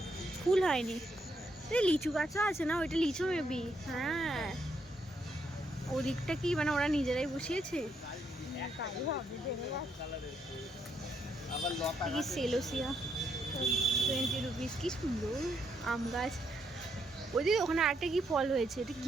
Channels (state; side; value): normal; both; correlation 0.76